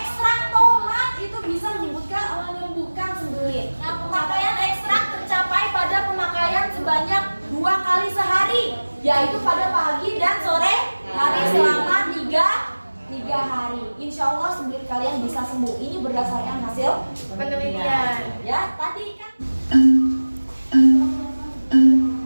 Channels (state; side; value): inverted; both; correlation -1.00